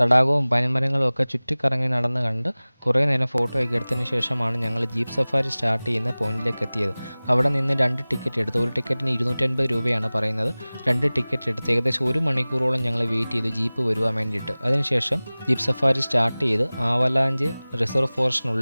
പനിമരങ്ങളും ഒക്കെ ചുറ്റിക്കറങ്ങി നടന്ന് കണ്ട് കുറേ നേരം ഫോട്ടോ ഒക്കെ എടുത്തതിന് ശേഷമാണ് ഞങ്ങൾ ജീപ്പ് സഫാരി സ്റ്റാർട്ട് ചെയ്യുന്ന പോയിന്റിലേക്ക് എത്തിയത്. അവിടെ നിന്ന് 2 ടിക്കറ്റ് എടുത്തു. ഒരു ടിക്കറ്റിന് 250 രൂപയാണ് പറയുന്നത്. 2 ടിക്കറ്റ് എടുത്ത് ഏകദേശം 1 മണിക്കൂറോളം ഞങ്ങൾ വെയിറ്റ് ചെയ്തു ജീപ്പ് വരുവാൻ വേണ്ടിയിട്ട്. അതിനുശേഷം ജീപ്പ് സഫാരി സ്റ്റാർട്ട് ചെയ്ത് ആവലാഞ്ച് റിസർവ്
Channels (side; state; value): both; inverted; correlation -0.99